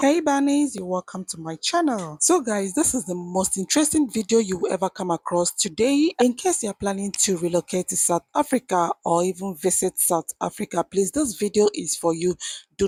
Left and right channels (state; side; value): identical; both; correlation 1.00